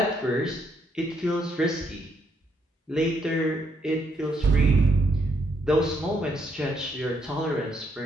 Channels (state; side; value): normal; both; correlation 0.74